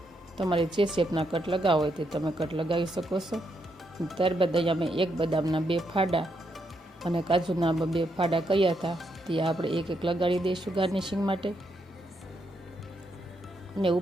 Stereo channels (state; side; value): normal; both; correlation 0.79